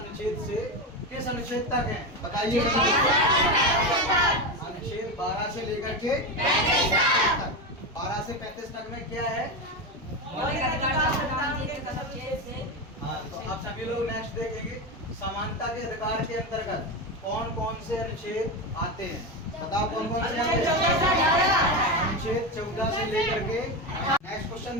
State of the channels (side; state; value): both; normal; correlation 0.16